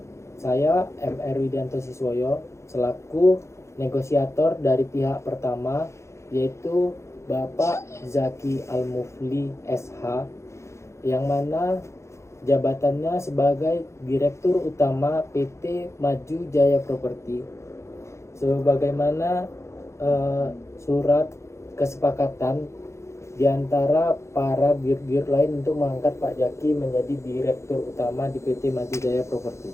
Saya MR Widianto Siswoyo selaku negosiator dari pihak pertama, yaitu Bapak Zaki Al-Mufli SH, yang mana jabatannya sebagai Direktur Utama PT Maju Jaya Properti. Sebagaimana surat kesepakatan di antara para dir-dir lain untuk mengangkat Pak Zaki menjadi Direktur Utama di PT Maju Jaya Properti.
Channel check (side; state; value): right; late; 0.14 ms